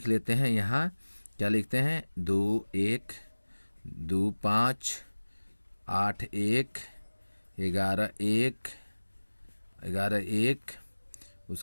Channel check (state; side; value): inverted; both; correlation -1.00